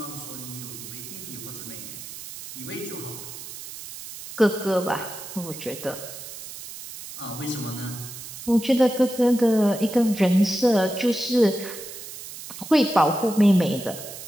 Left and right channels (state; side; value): noise; right; hiss, 12 dB below the sound